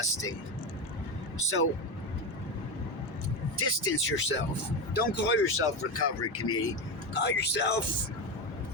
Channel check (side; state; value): right; late; 1.6 ms